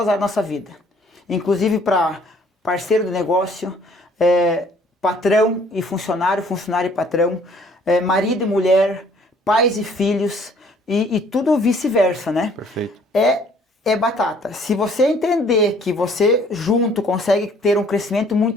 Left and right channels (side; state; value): both; normal; correlation 0.59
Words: as áreas da nossa vida. Inclusive para parceiro do negócio, patrão e funcionário, funcionário e patrão, marido e mulher, pais e filhos, e tudo vice-versa, né? Perfeito. É batata. Se você entender que você junto consegue ter um crescimento